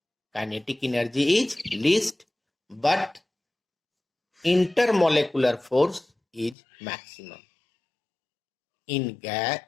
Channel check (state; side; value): drops out; right; at 6.6 s